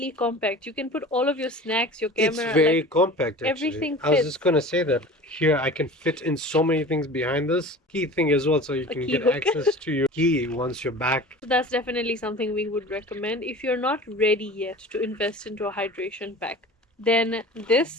compact. You can put all of your snacks, your camera. It's very compact, actually. Everything fits. I was just gonna say that here I can fit in so many things behind this key thing as well, so you can get access to your key once you're back. So that's definitely something we would recommend. If you're not ready yet to invest into a hydration pack, then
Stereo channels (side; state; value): both; normal; correlation 0.39